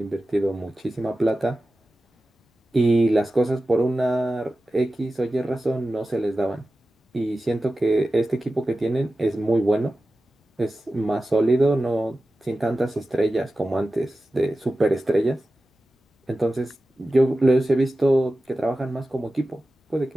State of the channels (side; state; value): both; normal; correlation 0.94